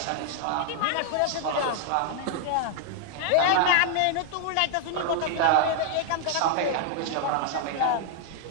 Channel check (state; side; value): different; both; correlation 0.00